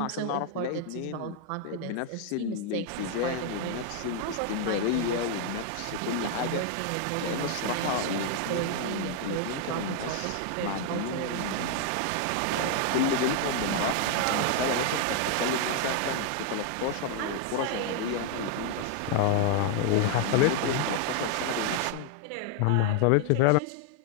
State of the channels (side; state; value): both; different; correlation 0.00